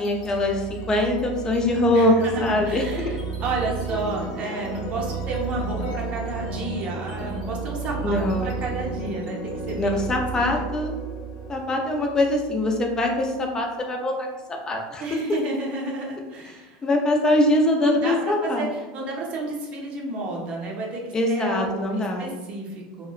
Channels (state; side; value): normal; both; correlation 0.40